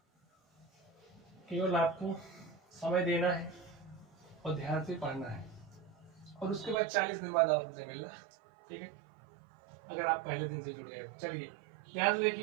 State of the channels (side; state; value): left; drops out; at 6.8 s